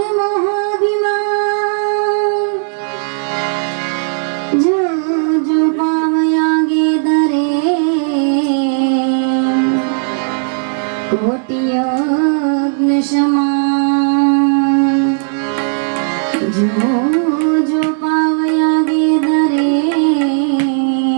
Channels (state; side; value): silent; left; digital silence